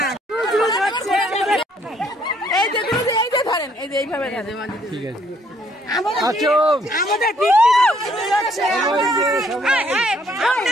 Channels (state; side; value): normal; both; correlation 0.66